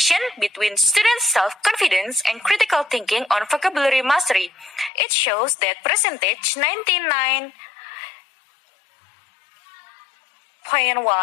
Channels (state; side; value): drops out; right; at 4.9 s